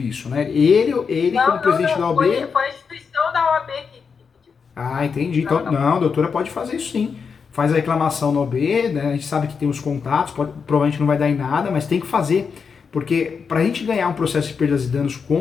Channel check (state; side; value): quieter; right; 5.8 dB